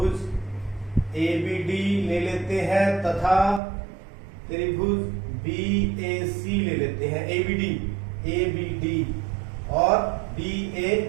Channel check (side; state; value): left; drops out; at 3.6 s